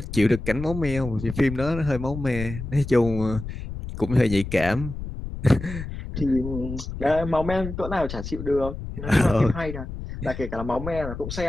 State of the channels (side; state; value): left; noise; rumble, 8 dB below the sound